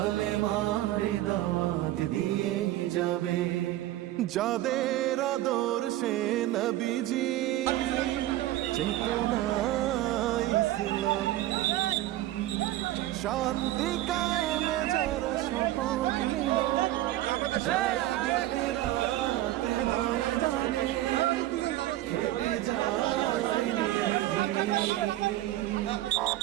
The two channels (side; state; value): left; quieter; 15.1 dB